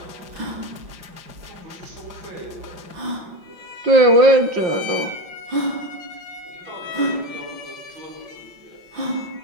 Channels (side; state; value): left; late; 5.6 ms